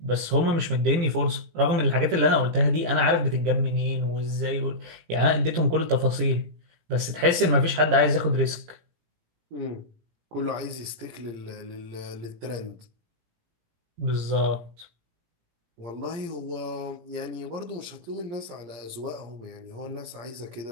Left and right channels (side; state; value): left; late; 17 ms